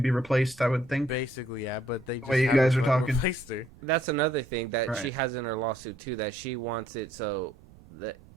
be replaced, I would think. Basically, yeah, but they just you guys are talking. Replaced her. That's another thing that she has in her lawsuit too. That she wants it so that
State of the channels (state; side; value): noise; right; rumble, 23 dB below the sound